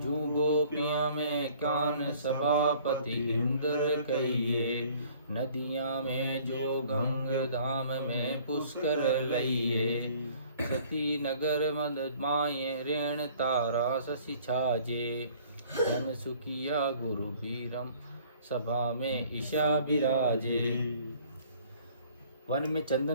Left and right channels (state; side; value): inverted; both; correlation -0.55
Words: गोपियां में कान सभापति इंद्र कहिए, नदियां में जो गंग धाम में पुष्कर लइए। सती नगर मद माये रेण तारा शशि छाजे, धन सुखिया गुरु बीरम सभा में ईशा विराजे। वन में